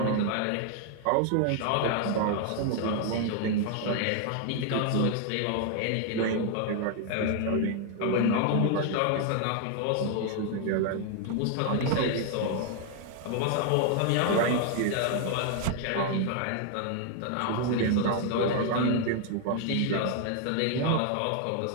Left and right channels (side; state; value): both; different; correlation 0.00